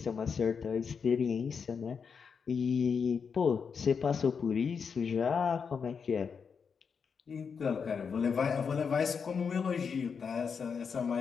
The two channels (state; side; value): quieter; right; 6.1 dB